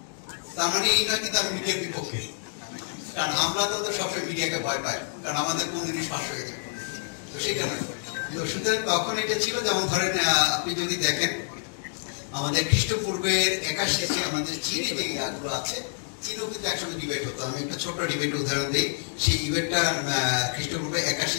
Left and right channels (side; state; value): right; silent; digital silence